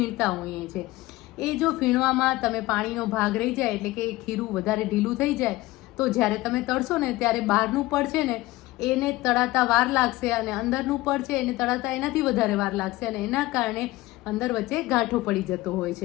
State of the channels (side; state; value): right; quieter; 18.7 dB